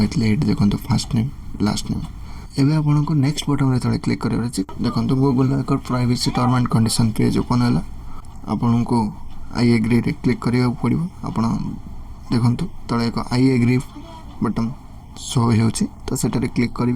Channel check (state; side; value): identical; both; correlation 1.00